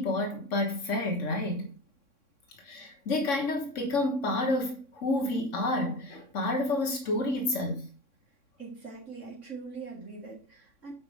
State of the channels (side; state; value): right; late; 3.6 ms